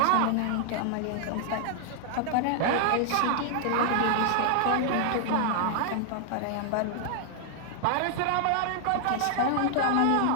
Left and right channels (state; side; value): different; both; correlation 0.00